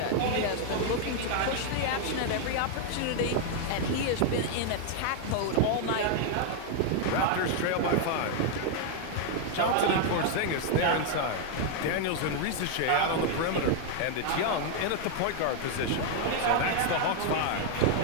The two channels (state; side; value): different; both; correlation 0.00